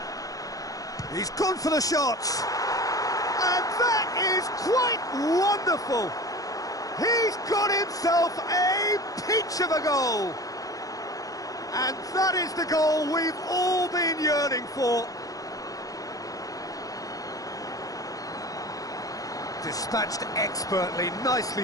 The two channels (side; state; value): right; late; 0.17 ms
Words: He's gone for the shot. And that is quite wonderful. He's got himself a peach of a goal. And that is the goal we've all been yearning for. Dispatched expertly,